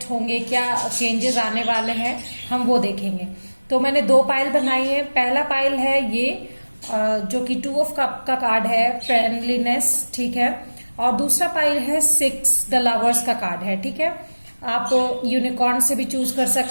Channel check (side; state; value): both; inverted; correlation -1.00